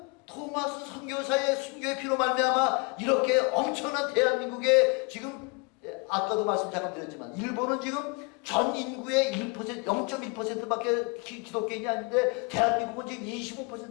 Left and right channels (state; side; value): quieter; right; 31.2 dB